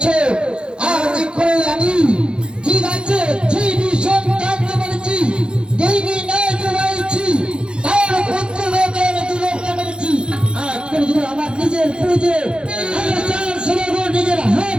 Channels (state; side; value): late; left; 0.052 ms